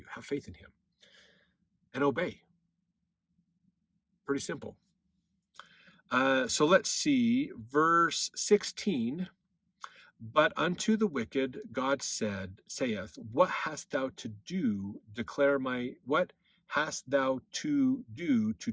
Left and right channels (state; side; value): identical; both; correlation 1.00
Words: Have faith in him. And obey. Pretty simple. So let's see, verse 16. But unto the wicked God saith, what hast thou to do, what hast thou to do to